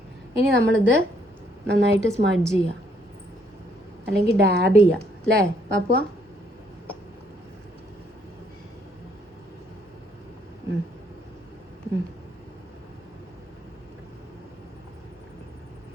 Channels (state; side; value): normal; both; correlation 0.68